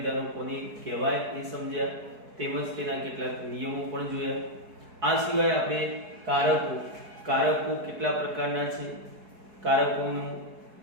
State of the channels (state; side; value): late; left; 4.7 ms